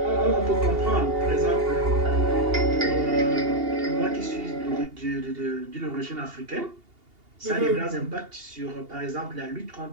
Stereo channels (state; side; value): late; left; 2.8 ms